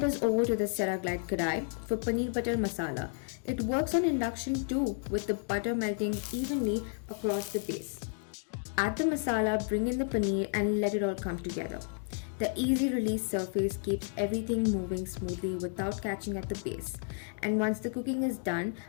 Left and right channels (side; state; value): right; silent; 56 dB below the other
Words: is over to the Ceraglide Kadai for paneer butter masala. It works on induction too, with the butter melting evenly across the base. Add the masala, bring in the paneer and let it all come together. The easy release surface keeps everything moving smoothly without catching at the base. And once the cooking is done,